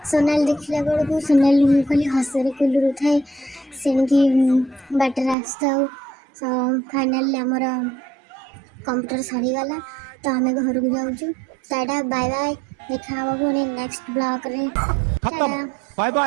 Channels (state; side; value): drops out; left; at 5.4 s